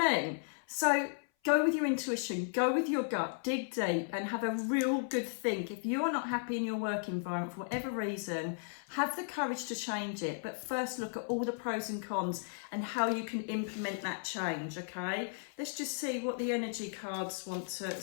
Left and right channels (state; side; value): silent; right; 54 dB below the other